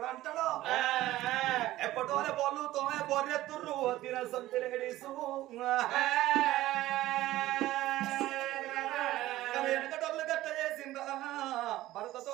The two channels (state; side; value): quieter; left; 15.7 dB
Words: అంటాడో ఎప్పటోనే బోళ్ళు తోమే బొర్రెత్తుర్రు తిన సొంత లేడీస్ వెనకటోళ్ళు గట్ట చేసిందా